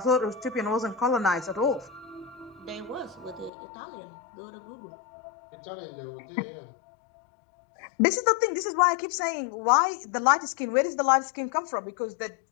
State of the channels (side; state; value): right; drops out; at 3.5 s